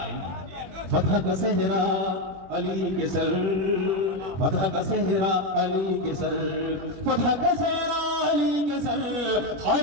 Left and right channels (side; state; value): left; late; 21 ms